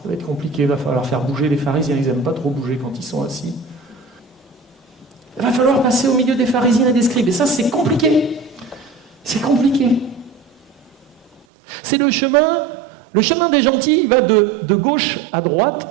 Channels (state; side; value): drops out; left; at 11.5 s